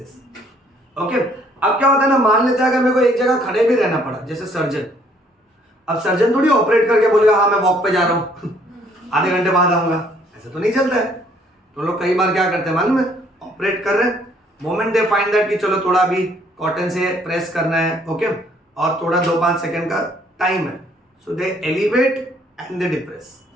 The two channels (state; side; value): normal; both; correlation 0.63